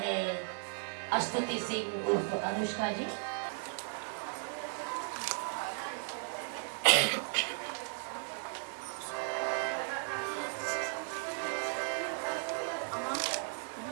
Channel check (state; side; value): silent; left; 54 dB below the other